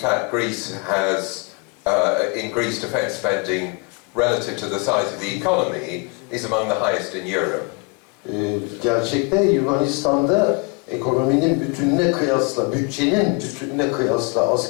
Greece has, in Greece, defence spending relative to the size of the economy is among the highest in Europe. Gerçekte Yunanistan'da ekonominin bütününe kıyasla, bütçenin bütününe kıyasla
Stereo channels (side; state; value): right; quieter; 31.0 dB